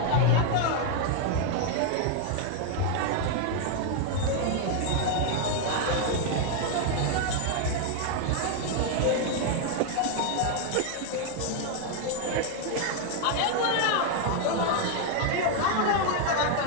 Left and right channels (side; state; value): both; different; correlation 0.01